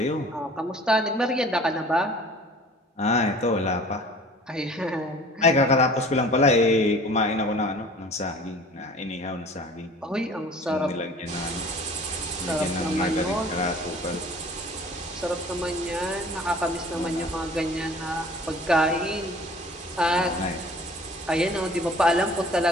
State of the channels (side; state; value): both; normal; correlation 0.47